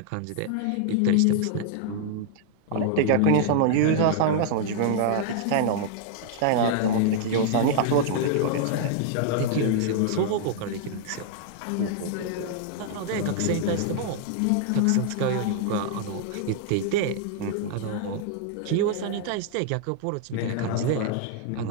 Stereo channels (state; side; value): different; both; correlation -0.01